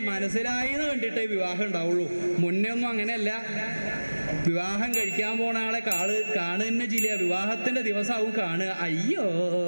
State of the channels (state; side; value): inverted; both; correlation -1.00